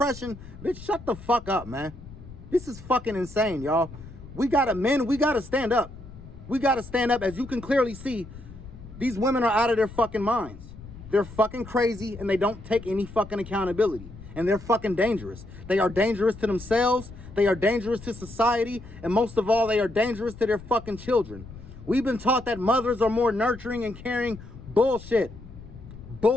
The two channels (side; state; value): left; noise; rumble, 16 dB below the sound